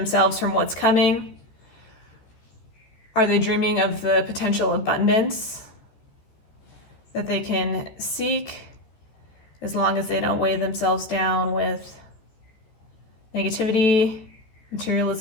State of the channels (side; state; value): right; late; 14 ms